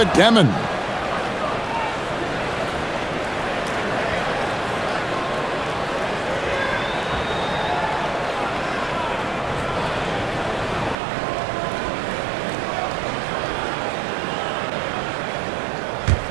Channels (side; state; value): left; drops out; at 11.0 s